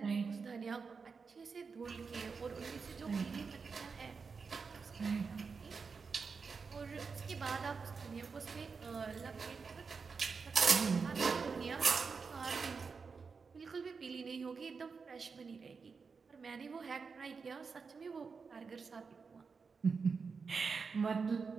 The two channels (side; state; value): left; quieter; 5.1 dB